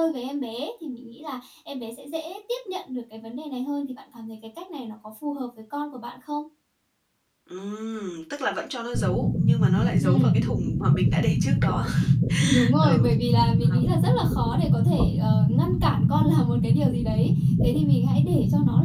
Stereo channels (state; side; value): identical; both; correlation 1.00